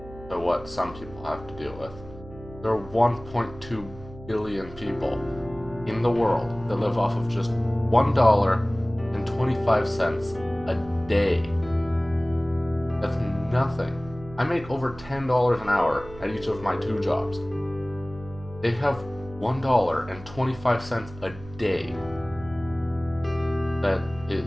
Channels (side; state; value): right; noise; hum, 16 dB below the sound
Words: to what some people have to deal with. There are 1.2 billion people in the world that live off of just $1.25 a day. That's nothing. I make over $10 an hour at each of my 2 jobs. They have $1.25 a day. That